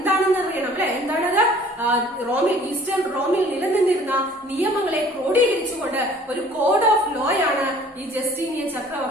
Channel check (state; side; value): normal; both; correlation 0.52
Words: അറിയണം അല്ലെ? എന്താണത്? ഈസ്റ്റേൺ റോമിൽ നിലനിന്നിരുന്ന നിയമങ്ങളെ ക്രോഡീകരിച്ചുകൊണ്ട് ഒരു കോഡ് ഓഫ് ലോയാണ് ഈ ജസ്റ്റീനിയൻ